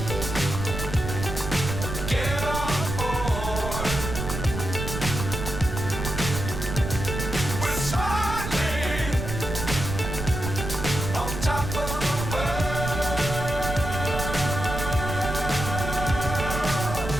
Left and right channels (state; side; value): noise; right; rumble, 5 dB below the sound